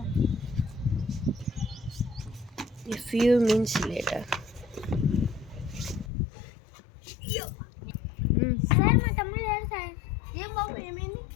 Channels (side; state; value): right; drops out; at 6.1 s